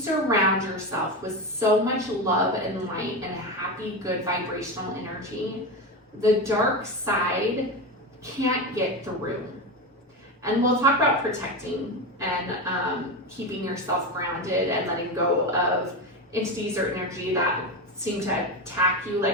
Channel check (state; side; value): normal; both; correlation 0.18